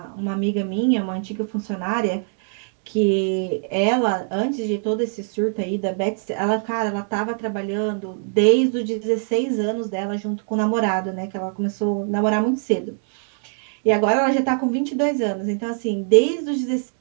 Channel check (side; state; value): left; silent; 64 dB below the other